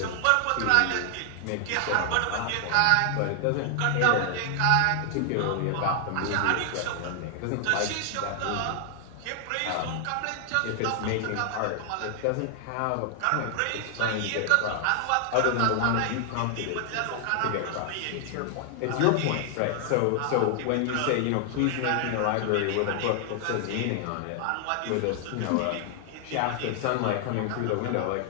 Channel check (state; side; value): different; both; correlation 0.00